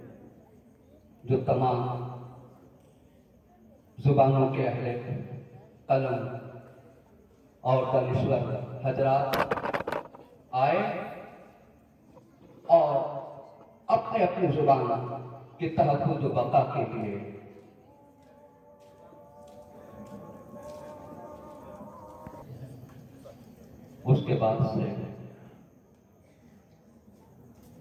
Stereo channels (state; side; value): identical; both; correlation 1.00